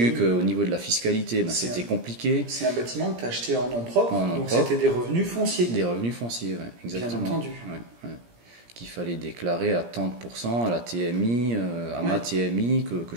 qu'au niveau de la fiscalité c'était compliqué. C'est un bâtiment que tu as acheté en nom propre, donc c'était des revenus fonciers. Des revenus fonciers, ouais, exactement. Bien entendu. Ouais. Qu'il fallait déclarer à 30% à la TMI, ma TMI que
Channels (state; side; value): late; left; 17 ms